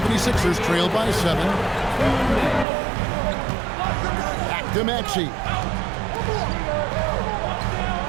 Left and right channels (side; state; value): left; drops out; at 2.7 s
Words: trail by 7. Back to Maxey.